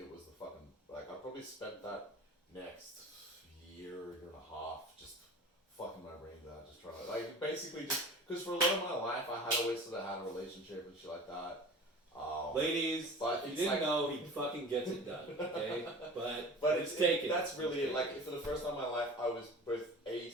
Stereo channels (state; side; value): normal; both; correlation 0.39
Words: was the fucking like I probably spent that next year and a half just fucking my brains out, just trying to like basically just because for a lot of my life I had always sort of had a relationship and shit like that. Ladies, but you it's didn't like, know he fucking gets it done, okay? But it's taken. That's really like for the first time in my life I was both A,